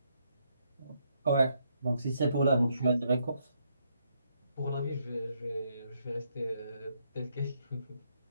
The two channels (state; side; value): inverted; both; correlation -0.75